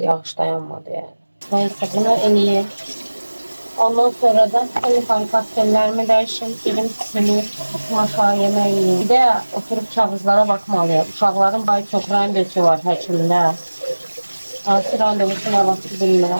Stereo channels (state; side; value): inverted; both; correlation -1.00